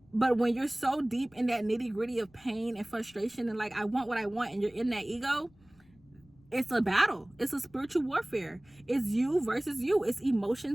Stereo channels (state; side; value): noise; left; rumble, 29 dB below the sound